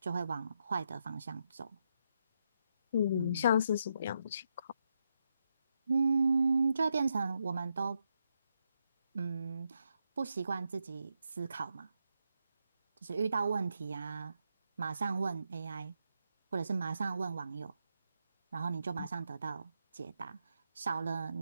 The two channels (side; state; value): both; inverted; correlation -0.82